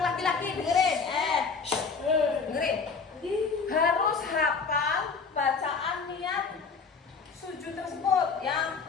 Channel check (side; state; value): right; quieter; 5.1 dB